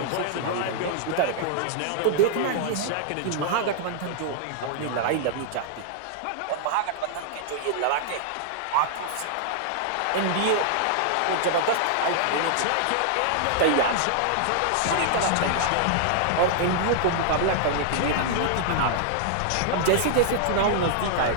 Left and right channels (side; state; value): both; different; correlation -0.01